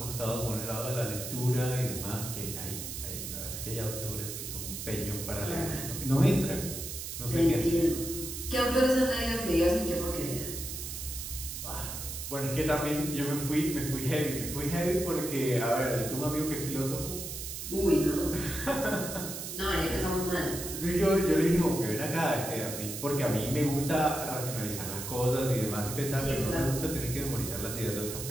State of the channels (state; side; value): noise; right; hiss, 7 dB below the sound